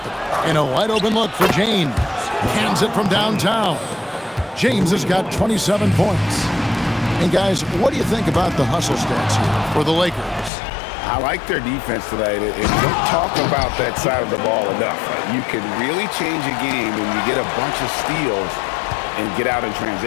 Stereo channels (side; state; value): right; drops out; at 10.5 s